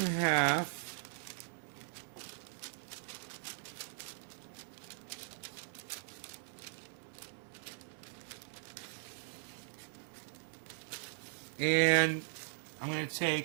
half. And I'm going to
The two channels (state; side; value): silent; left; digital silence